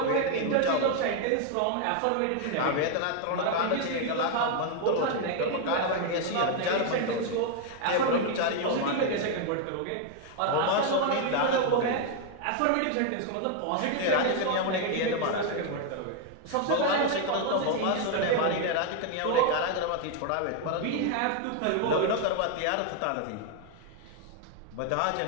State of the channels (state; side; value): different; both; correlation 0.00